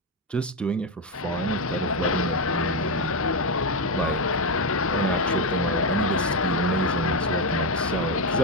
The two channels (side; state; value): both; normal; correlation 0.08